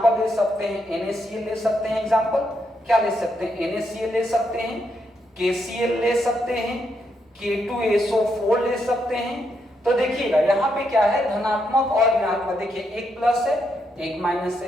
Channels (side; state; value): both; normal; correlation 0.79